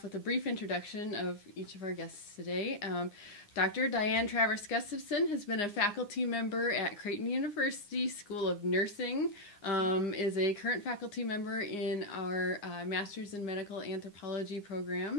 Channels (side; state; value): right; late; 9.8 ms